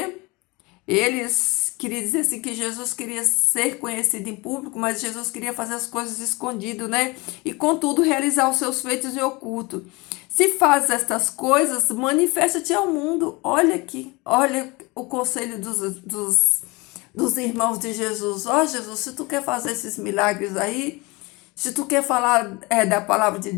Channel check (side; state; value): right; quieter; 25.0 dB